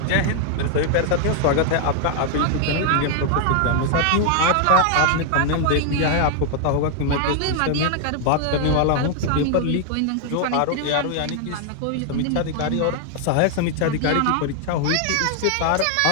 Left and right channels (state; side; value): different; both; correlation 0.00